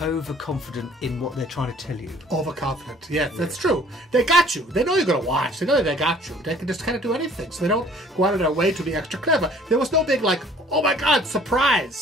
overconfident in what they're trying to tell you. Overconfident, yes, that's true. They got you. They know you're going to watch. They know they got you. They can just kind of do anything. So they don't go out of their way to be extra clever. There was no big like, oh my God,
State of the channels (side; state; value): both; normal; correlation 0.54